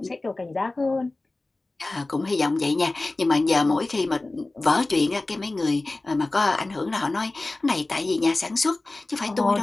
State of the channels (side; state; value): right; quieter; 3.0 dB